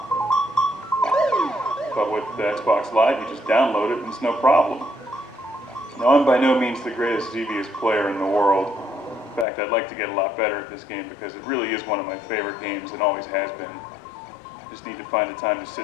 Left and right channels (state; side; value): drops out; right; at 9.5 s